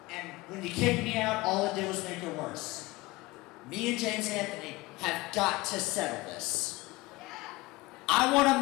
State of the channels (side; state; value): right; quieter; 21.3 dB